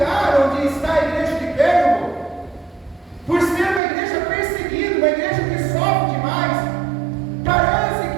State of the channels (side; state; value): left; drops out; at 3.8 s